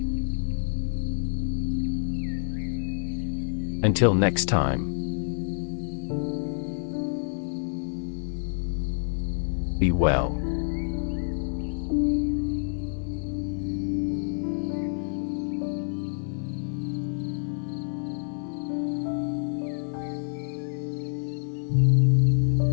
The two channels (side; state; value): right; silent; digital silence